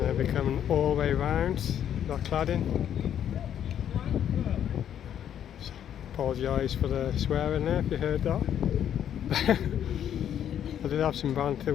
becoming all the way round that cladding. Apologise for the swearing there if you heard that. I did have some banter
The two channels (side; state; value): right; quieter; 9.8 dB